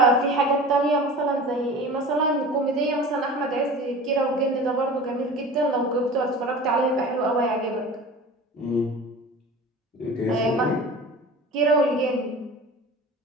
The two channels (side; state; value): both; normal; correlation 0.37